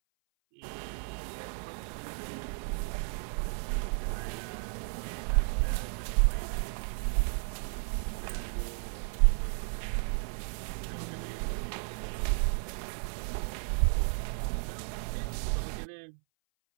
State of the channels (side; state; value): left; silent; 56 dB below the other